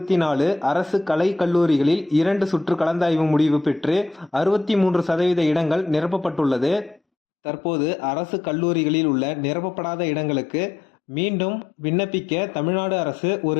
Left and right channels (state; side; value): drops out; right; at 7.0 s